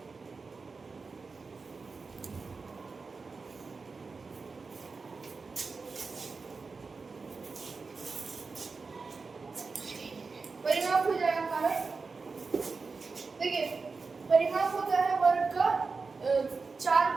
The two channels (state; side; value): quieter; left; 4.4 dB